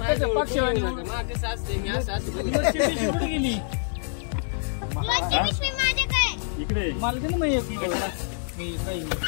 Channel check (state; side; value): silent; right; digital silence